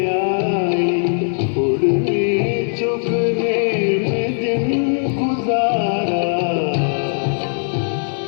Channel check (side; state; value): right; silent; digital silence